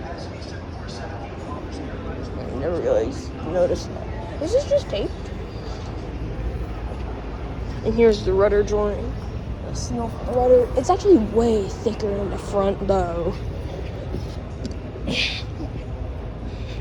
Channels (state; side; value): identical; both; correlation 1.00